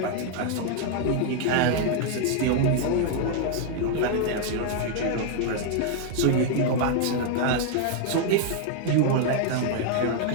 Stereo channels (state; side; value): different; both; correlation 0.00